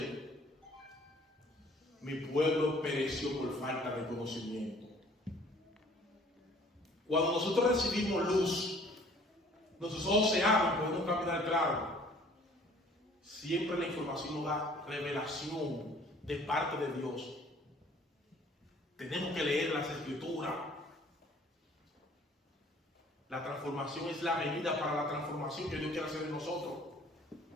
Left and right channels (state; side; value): normal; both; correlation 0.55